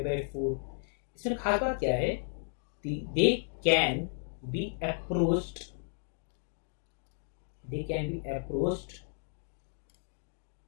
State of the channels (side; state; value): right; silent; digital silence